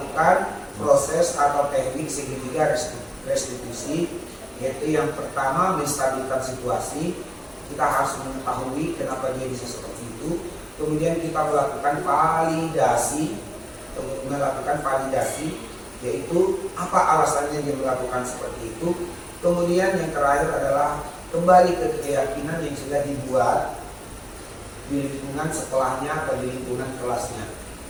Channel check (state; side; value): identical; both; correlation 1.00